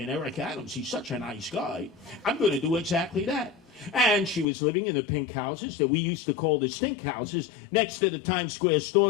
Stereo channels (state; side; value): drops out; right; at 4.5 s